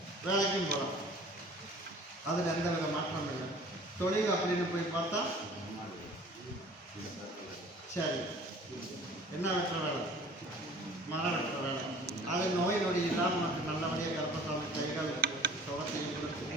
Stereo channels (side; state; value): both; normal; correlation 0.48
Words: வேலைக்கும் போகலாம். அதில் எந்த வித மாற்றம் இல்லை. தொழில் அப்படின்னு போய் பார்த்தா சரி என்ன வெட்டுற வேலை? மரம் வெட்டுற வேலை. அது நோய் நொடி இல்லாமல் நமக்கு நல்லபடியாக கருப்பசாமி கைகள் சுகத்தையும் கொடுத்து